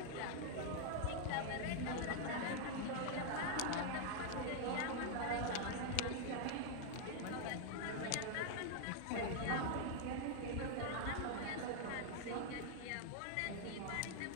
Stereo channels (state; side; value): different; both; correlation 0.00